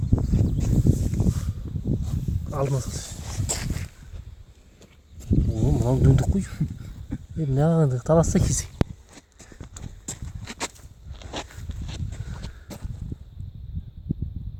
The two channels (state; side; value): identical; both; correlation 1.00